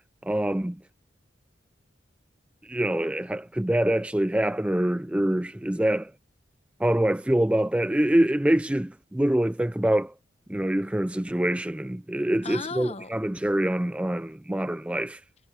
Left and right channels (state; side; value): normal; both; correlation 0.96